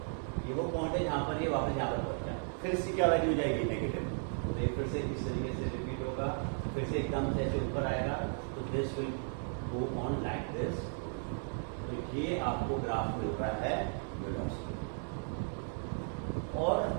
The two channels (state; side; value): silent; left; 54 dB below the other